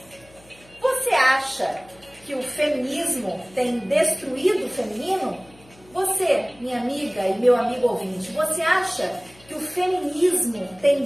Você acha que o feminismo tem destruído o feminino? Você, minha amiga e meu amigo ouvinte, você acha que o feminismo tem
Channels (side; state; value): left; noise; hum, 26 dB below the sound